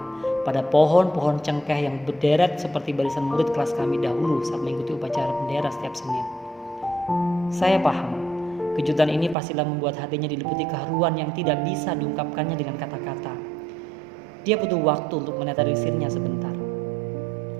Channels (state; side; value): drops out; left; at 9.3 s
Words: pada pohon-pohon cengkeh yang berderet seperti barisan murid kelas kami dahulu saat mengikuti upacara bendera setiap Senin. Saya paham, kejutan ini pastilah membuat hatinya diliputi keharuan yang tidak bisa diungkapkannya dengan kata-kata. Dia butuh waktu untuk menetralisirnya sebentar.